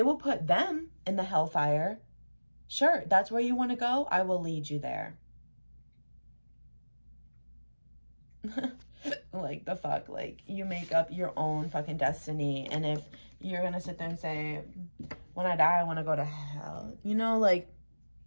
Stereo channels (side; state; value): both; inverted; correlation -1.00